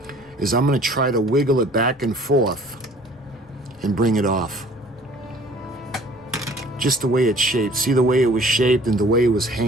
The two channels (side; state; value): both; normal; correlation 0.52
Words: is I'm going to try to wiggle it back and forth and bring it off. Just the way it's shaped. See the way it was shaped and the way it was